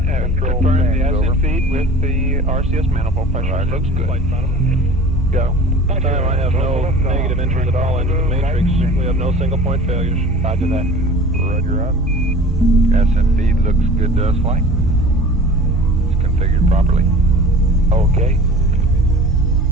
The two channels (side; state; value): both; normal; correlation 0.41